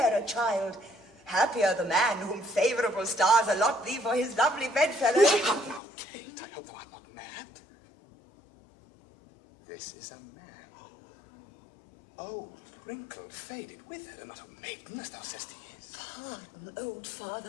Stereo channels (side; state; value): right; drops out; at 5.8 s